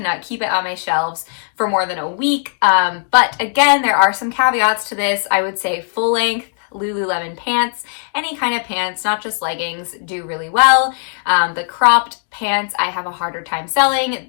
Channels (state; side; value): silent; right; digital silence